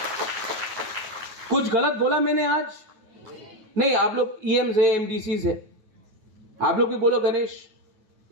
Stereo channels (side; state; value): left; late; 9.3 ms